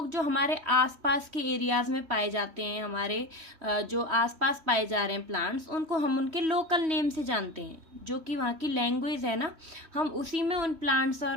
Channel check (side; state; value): left; late; 3.1 ms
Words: जो हमारे आसपास के एरियाज में पाए जाते हैं, हमारे जो आसपास पाए जा रहे हैं प्लांट्स, उनको हम उनके लोकल नेम से जानते हैं। जो कि वहाँ की लैंग्वेज है ना, हम उसी में उन प्लांट्स